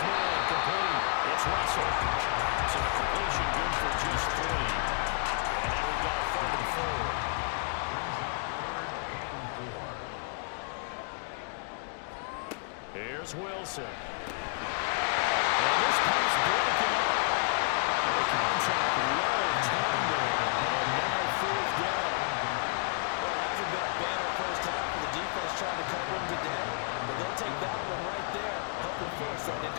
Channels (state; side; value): silent; right; 57 dB below the other